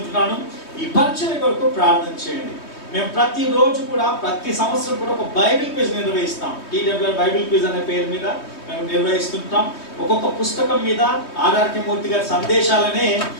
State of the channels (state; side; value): late; right; 3.2 ms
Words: ఈ పరిచర్య కొరకు ప్రార్థన చేయండి. మేము ప్రతిరోజు కూడా ప్రతి సంవత్సరం కూడా ఒక బైబిల్ క్విజ్ నిర్వహిస్తాం. టీడబ్ల్యూఆర్ బైబిల్ క్విజ్ అనే పేరు మీద మేము నిర్వహిస్తుంటాం. ఒక్కొక్క పుస్తకం మీద ఆర్ఆర్కే మూర్తి గారి సందేశాలనే